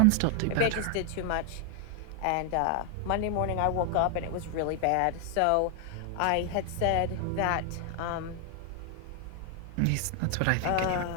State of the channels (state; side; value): different; both; correlation 0.00